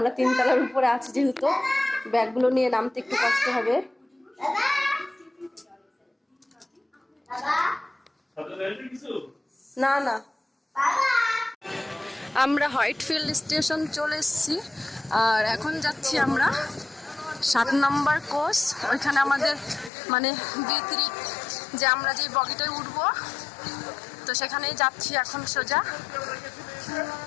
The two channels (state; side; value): drops out; right; at 19.9 s